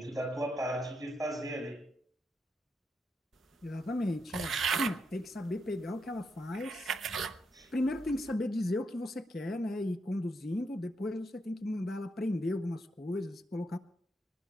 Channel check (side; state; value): both; normal; correlation 0.80